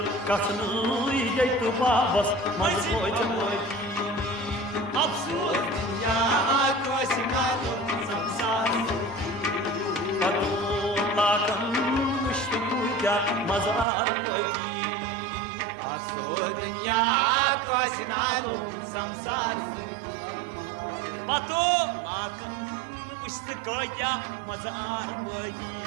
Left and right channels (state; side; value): drops out; left; at 13.9 s